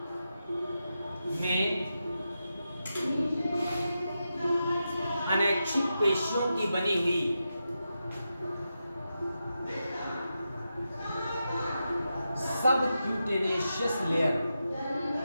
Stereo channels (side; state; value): both; inverted; correlation -0.88